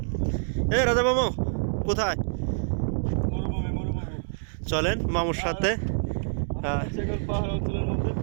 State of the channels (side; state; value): left; silent; digital silence